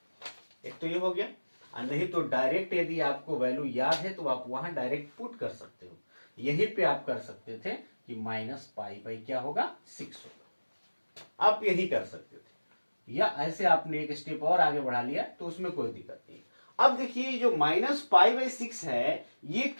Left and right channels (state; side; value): inverted; both; correlation -1.00